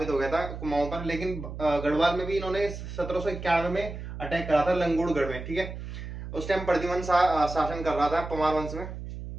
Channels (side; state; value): right; noise; hum, 9 dB below the sound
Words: हो गया था कुमाऊं पर, लेकिन गढ़वाल में भी इन्होंने 1791 में अटैक करा था लंगूड़गढ़ में। ठीक है, उस टाइम प्रद्युमन शासन कर रहा था पवार वंश में